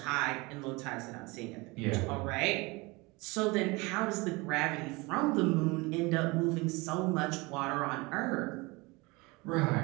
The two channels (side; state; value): left; quieter; 24.8 dB